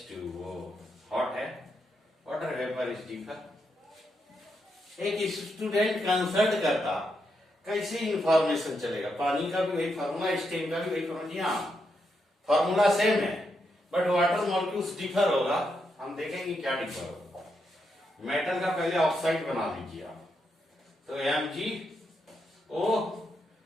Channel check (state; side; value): normal; both; correlation 0.82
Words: hot है, water vapour is deeper. एक student consult करता, कैसे इंफॉर्मेशन चलेगा, पानी का भी वही फार्मूला, स्टीम का भी वही फार्मूला, फार्मूला सेम है बट वाटर मॉलिक्यूल्स डिफर होगा। हम देखेंगे क्या डिफर होगा। मेटल का पहले ऑक्साइड बना लीजिए आप, तो MgO